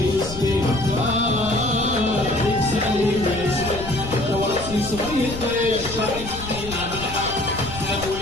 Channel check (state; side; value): noise; left; rumble, 11 dB below the sound